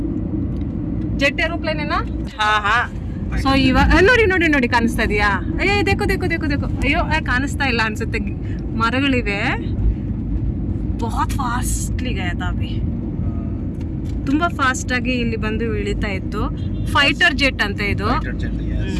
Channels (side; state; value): both; identical; correlation 1.00